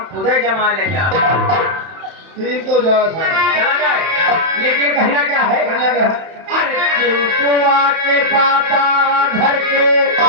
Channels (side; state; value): left; late; 31 ms